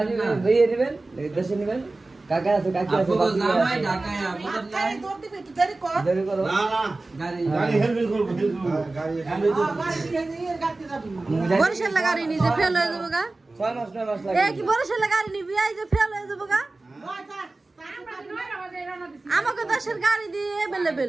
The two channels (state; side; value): quieter; left; 3.2 dB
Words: দিবেন দিয়ে দিবেন দেশে নেবেন কাকা আছে কাকি আছে আপু জামাই ঢাকায় আপু নাই দেরি করো না না গাড়ি গাড়ি হেলমেট করব গাড়ি হেলমেট বরিশাল গাড়ি নিজে ফেল হয়ে যাবো গা 6 মাস 9 মাস এ লাগে কি বরিশাল গাড়ি নিবি এই যে ফেল হয়ে যাবো গা আমাকে দেশের গাড়ি দিয়ে অ্যাভেলেবেল